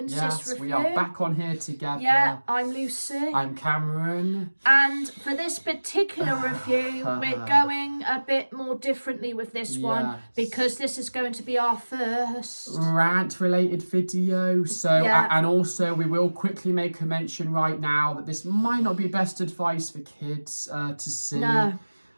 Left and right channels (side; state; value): both; inverted; correlation -1.00